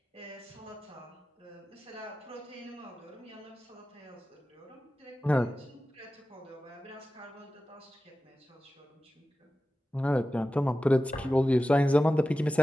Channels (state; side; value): normal; both; correlation 0.94